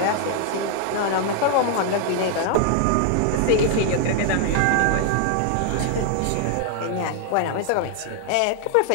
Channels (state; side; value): different; both; correlation 0.00